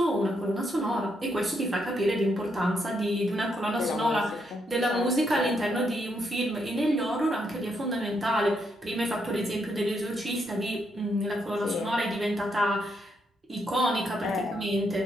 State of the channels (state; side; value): normal; both; correlation 0.77